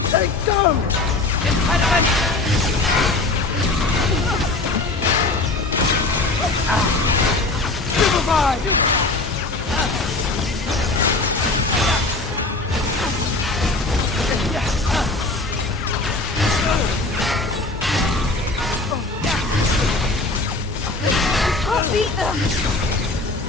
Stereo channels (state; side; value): quieter; right; 3.3 dB